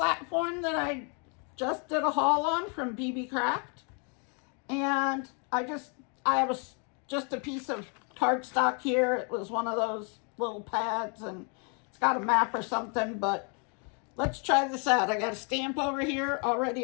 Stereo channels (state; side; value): quieter; right; 37.4 dB